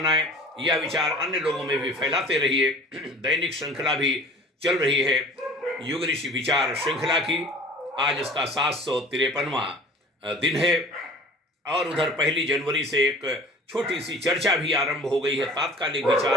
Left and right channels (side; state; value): both; normal; correlation 0.45